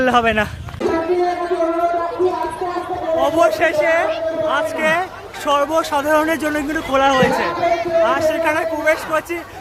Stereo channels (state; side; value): identical; both; correlation 1.00